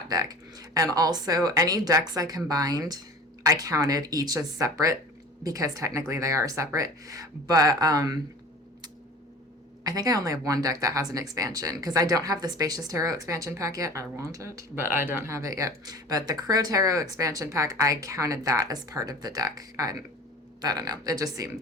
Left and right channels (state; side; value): normal; both; correlation 0.40